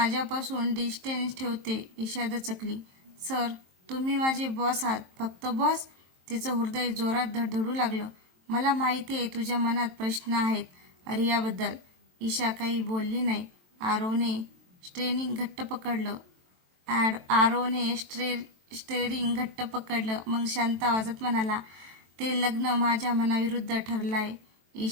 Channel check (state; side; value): late; left; 23 ms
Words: डिस्टन्स ठेवते. ईशा दचकली. सर, तुम्ही माझे बॉस आहात. फक्त बॉस? तिचं हृदय जोरात धडधडू लागलं. मला माहिती आहे तुझ्या मनात प्रश्न आहेत रियाबद्दल. ईशा काही बोलली नाही. आरवने स्टेरिंग घट्ट पकडलं. मग शांत आवाजात म्हणाला, ते लग्न माझ्या मनाविरुद्ध ठरलंय.